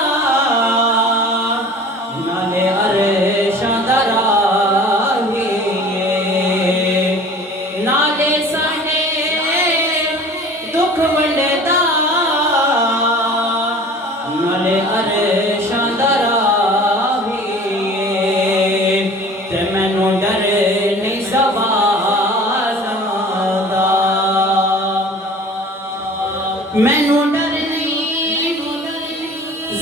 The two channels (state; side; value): normal; both; correlation 0.44